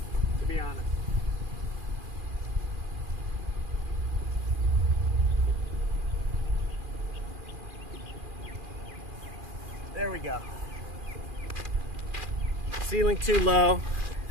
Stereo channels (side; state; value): left; late; 2.4 ms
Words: to be honest. There we go. Ceiling too low,